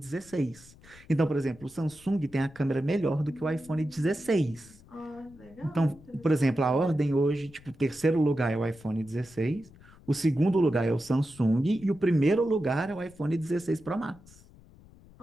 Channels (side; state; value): left; noise; rumble, 23 dB below the sound